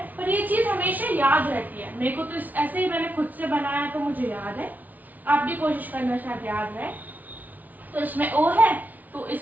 पर ये चीज हमेशा याद रहती है। मेरे को तो ऐसे ही मैंने खुद से बनाया तो मुझे याद है, आप भी कोशिश करना, शायद याद रहे। तो इसमें ओ है तो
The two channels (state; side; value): late; left; 0.078 ms